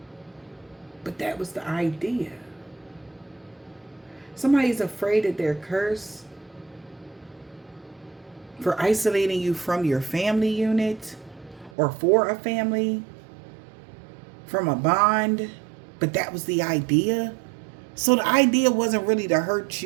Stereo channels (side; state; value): left; drops out; at 11.7 s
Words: But that was the idea. Somebody's afraid that they're cursed for isolating you from your family unit or for a family, from a bond. But that was the idea. So the idea wasn't really to hurt